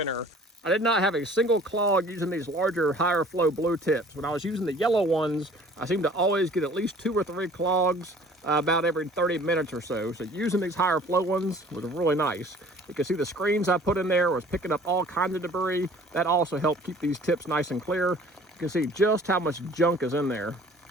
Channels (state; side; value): normal; both; correlation 0.50